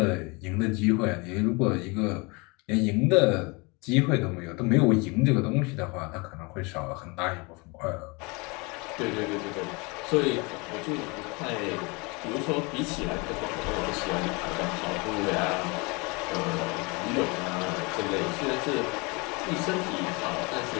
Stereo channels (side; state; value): right; quieter; 28.3 dB